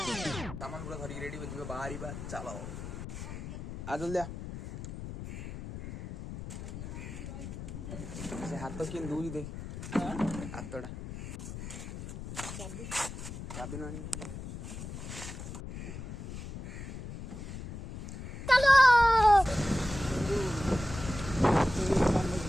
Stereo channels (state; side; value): noise; left; rumble, 9 dB below the sound